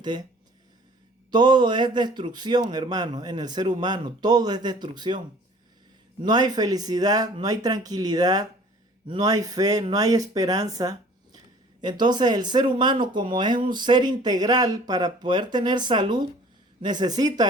todo es destrucción, hermano, en el ser humano, todo es destrucción. No hay felicidad, no hay tranquilidad, no hay fe, no hay esperanza. Entonces el ser humano, como es un ser integral, para poder tener salud, necesita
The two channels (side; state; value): both; normal; correlation 0.50